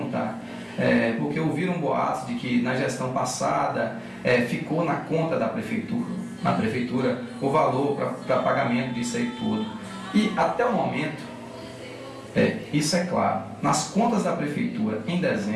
porque ouviram boatos de que na gestão passada ficou na conta da prefeitura, o valor para pagamento disso aí tudo. E até o momento, isso é claro, nas contas da prefeitura em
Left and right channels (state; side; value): identical; both; correlation 1.00